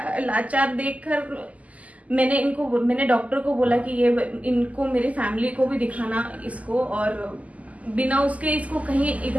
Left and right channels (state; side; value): late; left; 0.071 ms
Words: लाचार देखकर मैंने डॉक्टर को बोला कि ये इनको मेरी फैमिली को भी दिखाना इसको, और बिना उसके इसको कहीं